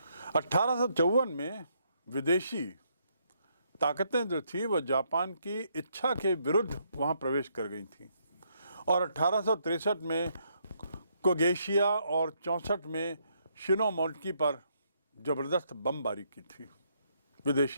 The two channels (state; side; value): inverted; both; correlation -0.74